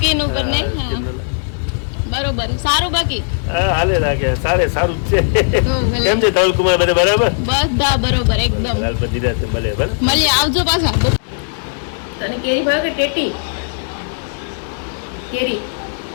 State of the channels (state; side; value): silent; right; digital silence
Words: ઉપર નહીં. હા બરોબર. સારું બાકી હા, હાલે રાખે. સારું જ છે. તો ભલે. કેમ છે ધવલ કુમાર? બધા બરાબર? બધા બરોબર એકદમ. હાલ બધી રાતે મળે. બરાબર? મળીએ, આવજો પાછા. તને કેરી ભાવે કે ટેટી? કેરી